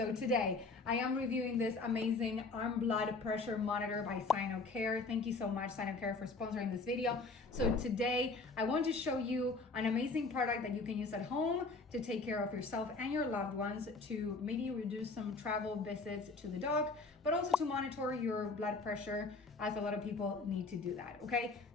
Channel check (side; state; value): right; quieter; 3.7 dB